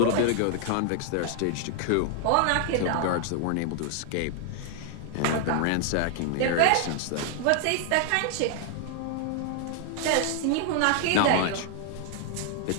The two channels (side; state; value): both; different; correlation 0.00